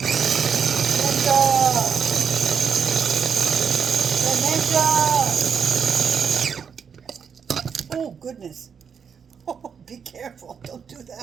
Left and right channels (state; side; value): quieter; left; 6.9 dB